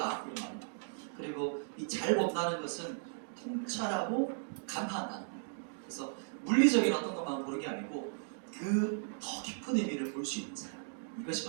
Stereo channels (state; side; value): silent; left; digital silence